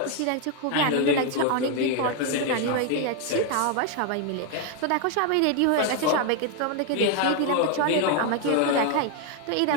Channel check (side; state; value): both; different; correlation 0.01